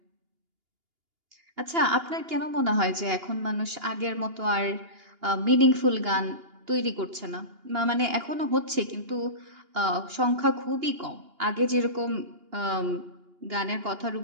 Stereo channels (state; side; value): late; left; 2.8 ms